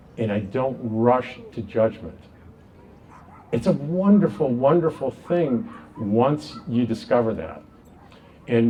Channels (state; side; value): identical; both; correlation 1.00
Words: and I don't rush to judgment. It's a wonderful, wonderful thing once you discover that.